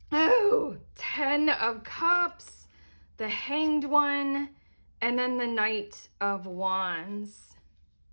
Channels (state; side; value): inverted; both; correlation -1.00